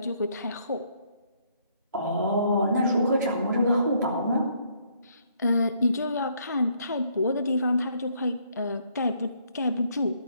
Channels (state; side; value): inverted; both; correlation -0.69